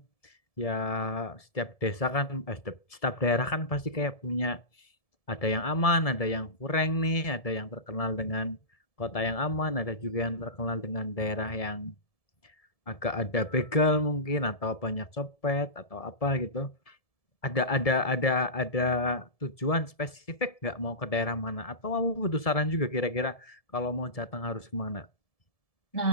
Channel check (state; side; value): late; right; 1.7 ms